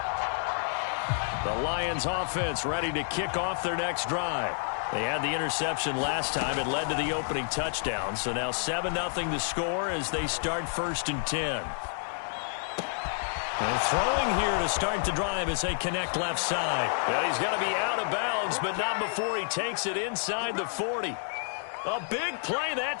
The Lions offense ready to kick off their next drive. They had the interception last time. It led to the opening touchdown. So now 7-0 to score as they start 1st and 10. And throwing here to start the drive as they connect left side. And he's going to be out of bounds, but not before he takes it inside the 40. A big play that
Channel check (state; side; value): silent; right; digital silence